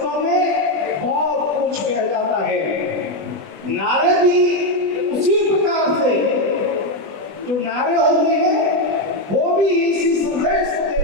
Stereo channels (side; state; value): left; late; 20 ms